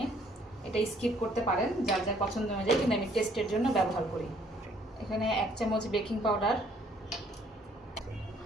এটা স্কিপ করতে পারেন যার যার পছন্দ অনুযায়ী, কিন্তু আমি টেস্টের জন্য ব্যবহার করি। এখানে 1 চামচ বেকিং পাউডার,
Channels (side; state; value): both; normal; correlation 0.63